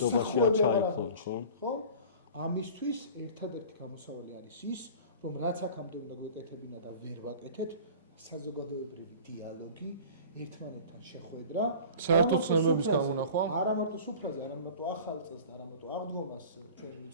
არ ჩაიქცნენ, ხო? ამისთვის ერთადერთი გამოსავალი არის ის, რომ რაც აქამდე უნდა გვეკეთებინა და ვერ ვაკეთეთ, საზოგადოებრივი დიალოგი, ერთმანეთთან შეხვედრა, საერთო ცნებების გამონახვა, არა მარტო სუფრაზე, არა მარტო ახალ წელს და არა მარტო აღდგომას ჩვენი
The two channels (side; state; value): both; inverted; correlation -0.41